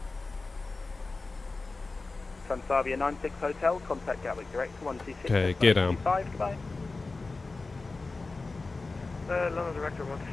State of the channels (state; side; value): quieter; right; 3.6 dB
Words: Transavia 96 Hotel, contact Gatwick direct to 126. Okay, gear down. Goodbye. London Director